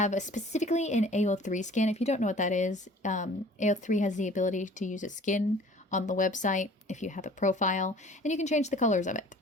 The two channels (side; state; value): both; normal; correlation 0.49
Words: specifically an AO3 skin. If you don't know what that is, AO3 has the ability to use a skin on the website if you have a profile, and you can change the colors of it.